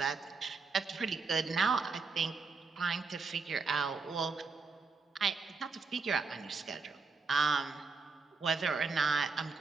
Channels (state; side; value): quieter; left; 4.5 dB